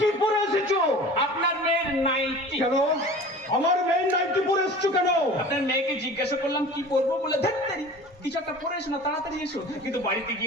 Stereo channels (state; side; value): normal; both; correlation 0.40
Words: পরে এসেছো? আপনার মেয়ের নাইটি। কেন আমার মেয়ের নাইটি পরে এসছো কেন? আপনার মেয়েকে জিজ্ঞাসা করলাম কি পরবো, বলে ধরতারি কিছু একটা পরে এসো না, তাড়াতাড়ি এসো। কিন্তু বাড়িতে